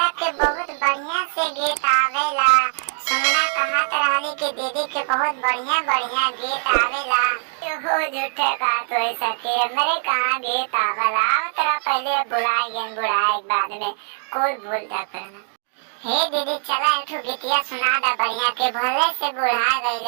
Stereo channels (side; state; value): left; silent; digital silence